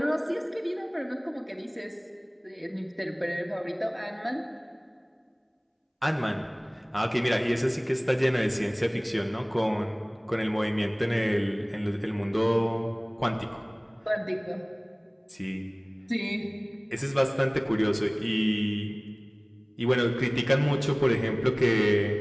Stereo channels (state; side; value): identical; both; correlation 1.00